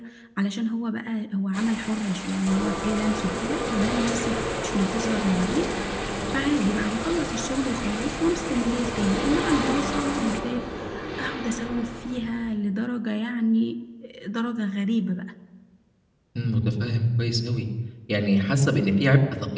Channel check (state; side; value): identical; both; correlation 1.00